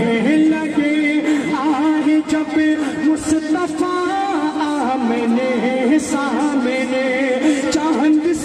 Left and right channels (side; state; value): both; identical; correlation 1.00